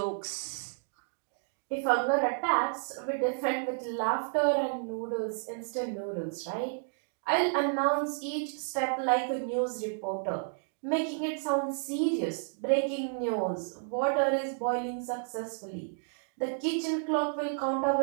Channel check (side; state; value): left; silent; digital silence